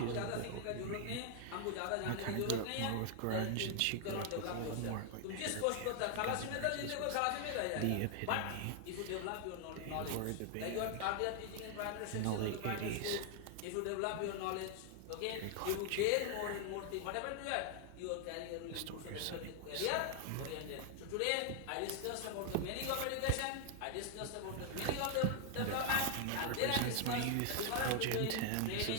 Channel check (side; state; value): both; different; correlation 0.00